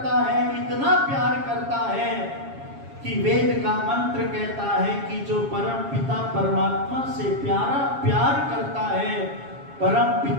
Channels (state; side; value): late; left; 7.3 ms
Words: है, इतना प्यार करता है कि वेद का मंत्र कहता है कि जो परम पिता परमात्मा से प्यार करता है, परम